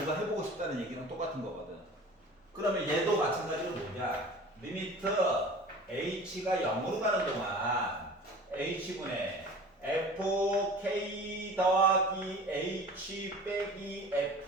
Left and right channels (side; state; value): both; normal; correlation 0.41